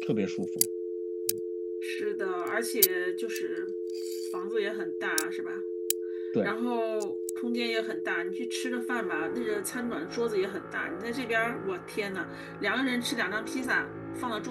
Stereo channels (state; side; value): identical; both; correlation 1.00